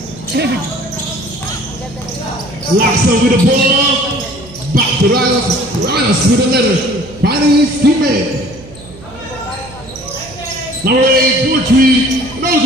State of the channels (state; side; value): noise; right; hum, 19 dB below the sound